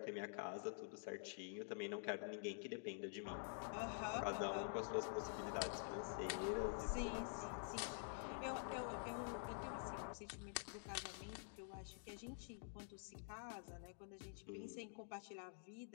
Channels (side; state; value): right; silent; digital silence